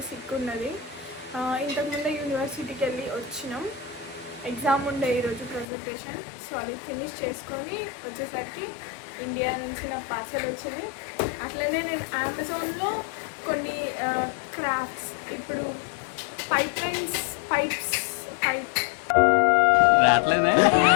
సిక్ ఉన్నది. ఇంతకుముందే యూనివర్సిటీకి వెళ్ళి వచ్చినాం. ఎగ్జామ్ ఉండే ఈరోజు ప్రజెంటేషన్. సో అది ఫినిష్ చేసుకొని వచ్చేసరికి ఇండియా నుంచి నా పార్సల్ వచ్చింది. అట్లనే నేను అమెజాన్లో కొన్ని క్రాఫ్ట్స్ ఇప్పుడు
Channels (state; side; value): drops out; right; at 5.7 s